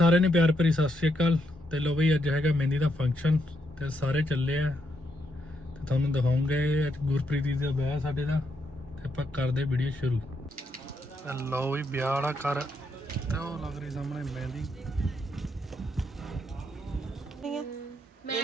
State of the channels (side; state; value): both; normal; correlation 0.79